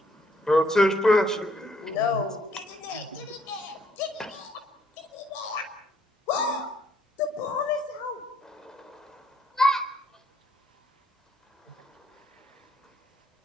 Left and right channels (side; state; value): both; normal; correlation 0.67